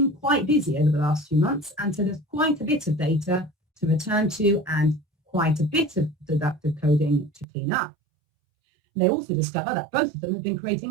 quite busy over the last few months, and so there's quite a bit of data to return to and quite a bit of deductive coding to clean up. And they also discover that both of them have been creating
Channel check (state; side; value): drops out; left; at 7.5 s